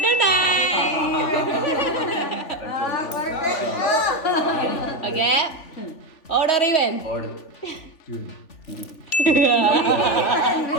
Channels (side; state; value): right; late; 3.5 ms